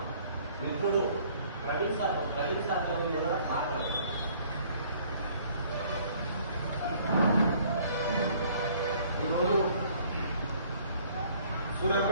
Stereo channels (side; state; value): both; inverted; correlation -0.58